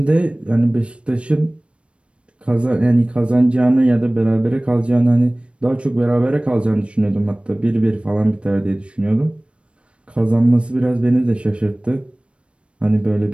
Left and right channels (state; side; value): late; left; 0.059 ms